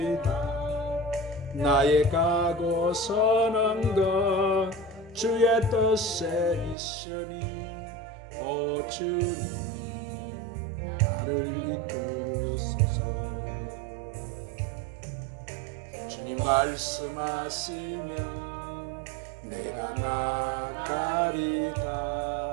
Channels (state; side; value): drops out; left; at 6.8 s